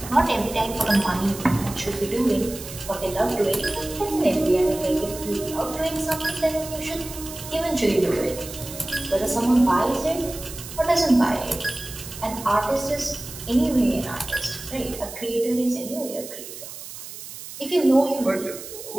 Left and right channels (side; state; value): right; noise; hiss, 12 dB below the sound